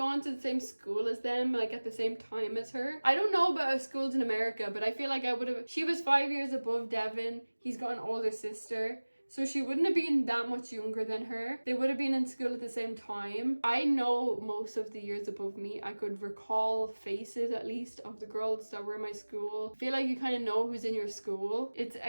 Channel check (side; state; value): both; inverted; correlation -1.00